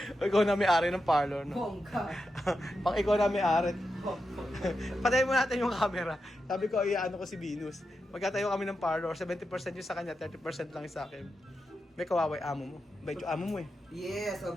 Ikaw na may-ari ng parlor, no? Bongga. Pang ikaw na may-ari. Patayin mo natin yung camera. Sabi ko, iyaano ko si Venus. Magkatayo kami ng parlor, 70% yung sa kanya, 30% lang yung sa akin. May kawaway amo mo. Bait yung amo mo eh. Yes,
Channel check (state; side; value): normal; both; correlation 0.88